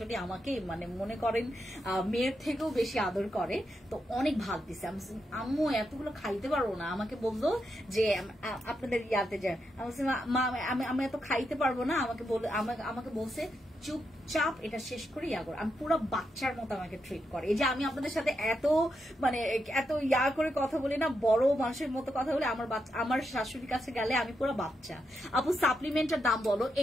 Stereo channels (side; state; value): both; normal; correlation 0.84